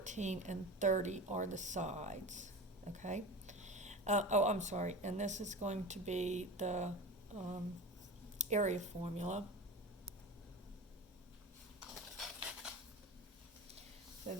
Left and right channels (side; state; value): both; normal; correlation 0.31